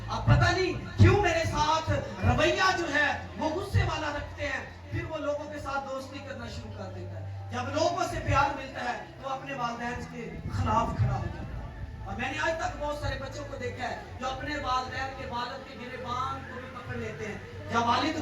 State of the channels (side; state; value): both; identical; correlation 1.00